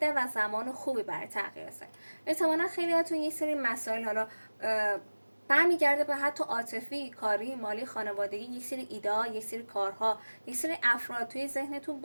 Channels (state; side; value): inverted; both; correlation -1.00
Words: و زمان خوبی برای تغییر است. احتمالاً خیلیاتون یک سری مسائل حالا برمیگرده به حتی عاطفی، کاری، مالی، خانوادگی، یک سری ایده، یک سری کارها، یک سری افراد توی ذهنتون